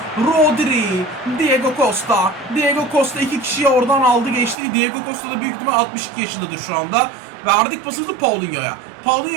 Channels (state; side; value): drops out; left; at 4.5 s